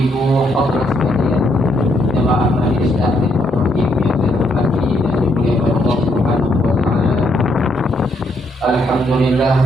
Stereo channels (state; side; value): normal; both; correlation 0.74